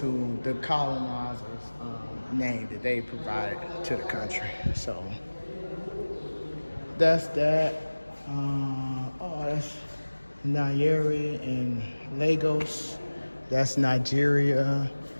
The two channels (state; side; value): inverted; both; correlation -1.00